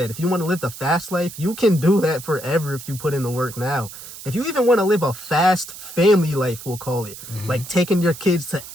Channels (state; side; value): noise; right; hiss, 14 dB below the sound